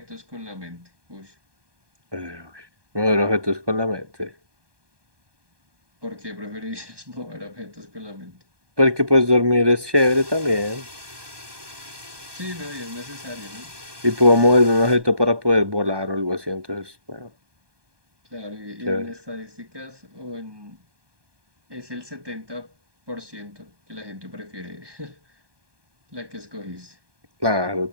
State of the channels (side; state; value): left; late; 1.2 ms